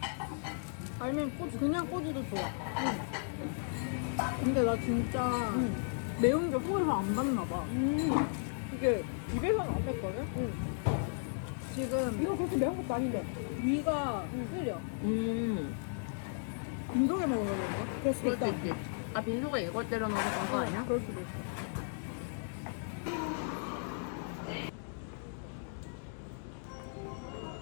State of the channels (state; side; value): silent; right; digital silence